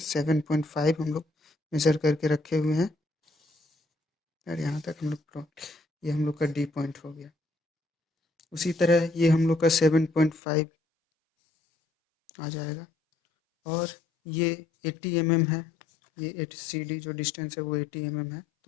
हम लोग मेजर करके रखे हुए हैं, और यहाँ तक हम लोग ये हम लोग का डी पॉइंट हो गया। उसी तरह ये हम लोग का 7.5 आ जाएगा, और ये 80 mm है। ये 80 सी डी जो डिस्टेंस है वो 80 mm है,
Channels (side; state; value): right; drops out; at 10.4 s